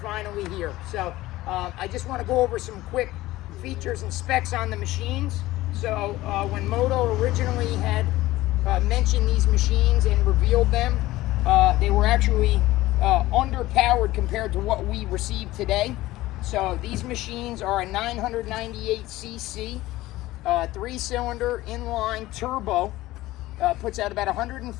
here. So I just want to go over some quick features and specs on the machines. So when Moto originally had mentioned these machines and revealed them, they were actually underpowered compared to what we received today. So these machines are a 998cc 3-cylinder inline turbo, puts out about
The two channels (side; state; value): right; quieter; 17.2 dB